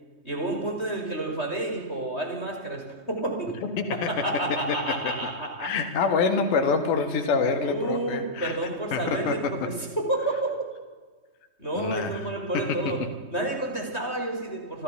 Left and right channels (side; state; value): right; late; 3.2 ms